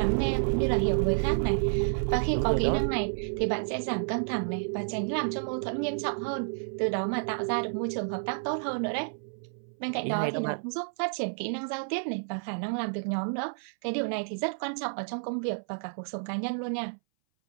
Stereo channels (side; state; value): left; silent; 58 dB below the other